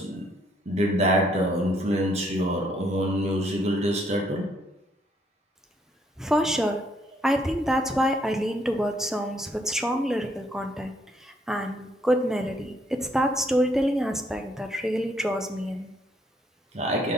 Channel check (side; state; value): both; normal; correlation 0.69